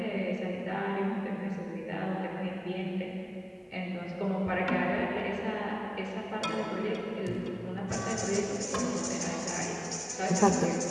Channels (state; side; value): identical; both; correlation 1.00